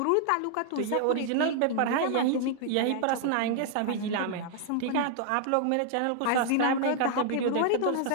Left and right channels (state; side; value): different; both; correlation 0.00